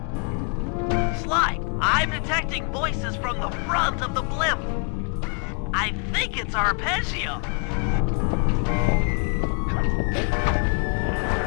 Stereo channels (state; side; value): quieter; right; 38.3 dB